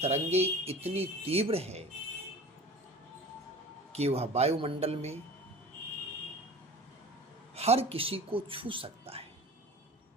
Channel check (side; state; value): both; normal; correlation 0.39